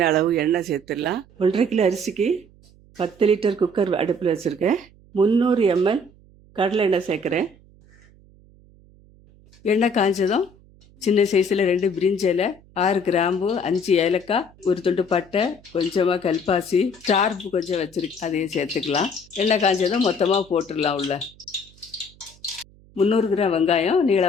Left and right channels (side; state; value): right; noise; hum, 27 dB below the sound